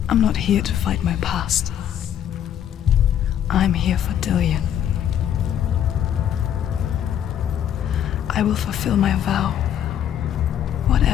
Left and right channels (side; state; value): right; quieter; 10.0 dB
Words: I'm not here to fight my past. I'm here for Dillian. I will fulfill my vow,